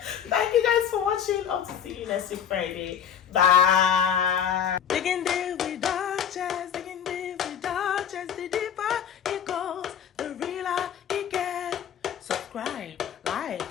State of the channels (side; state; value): right; quieter; 8.6 dB